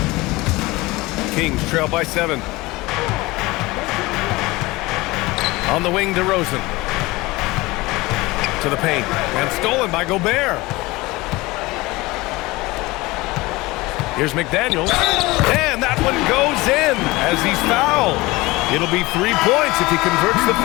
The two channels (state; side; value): quieter; right; 21.3 dB